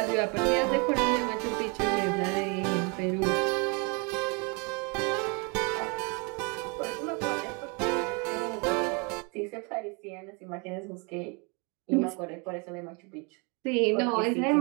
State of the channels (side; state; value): left; quieter; 32.2 dB